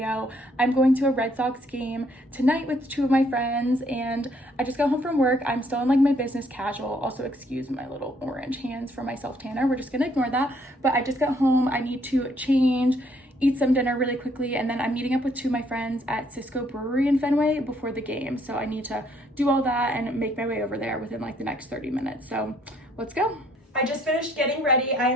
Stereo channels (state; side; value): normal; both; correlation 0.67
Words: I'm going to a Red Sox game tonight with two of my friends, and I just got home from work. I'm still in like my business casual. Also, excuse my little orange hands for my self-tanner. We're just gonna ignore that. But I just got home. I need to change, eat some dinner really quickly, and then I'm meeting up with two of my friends at Cisco Brewery in Fenway before the game. So I need to do all that and make my way over there within like the next 30 minutes. So let's go. I just finished getting ready. I